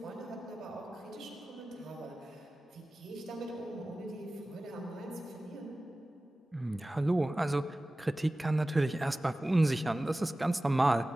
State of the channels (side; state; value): both; normal; correlation 0.96